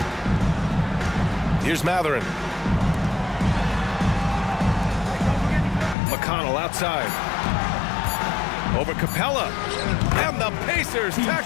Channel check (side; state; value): right; drops out; at 6.0 s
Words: Here's Mathurin. McConnell outside. Over Capella. And the Pacers tack